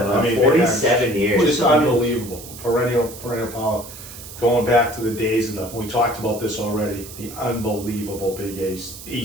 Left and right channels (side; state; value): right; noise; hiss, 14 dB below the sound